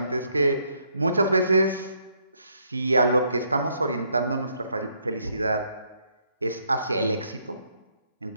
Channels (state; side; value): inverted; both; correlation -0.71